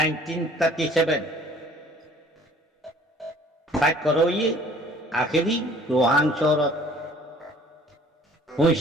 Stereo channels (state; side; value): normal; both; correlation 0.53